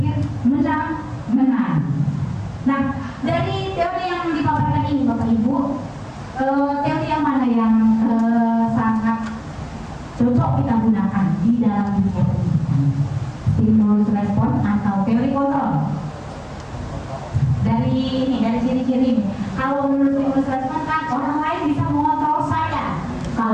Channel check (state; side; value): identical; both; correlation 1.00